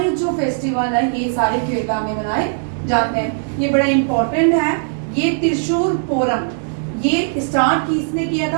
जो फेस्टिवल है ये सारे केरला में मनाए जाते हैं। ये बड़ा इंपॉर्टेंट है। ये त्रिशूर पोरम ये स्टार्ट किसने किया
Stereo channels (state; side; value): silent; left; digital silence